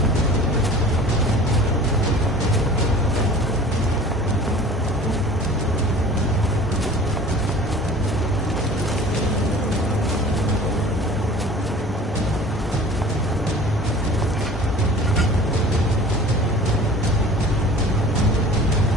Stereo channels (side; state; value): both; normal; correlation 0.44